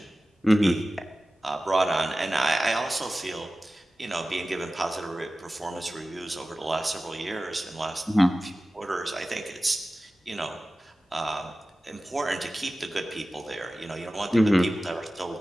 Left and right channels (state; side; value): normal; both; correlation 0.96